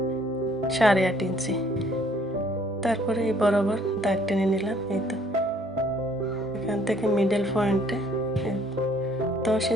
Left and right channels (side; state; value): both; normal; correlation 0.61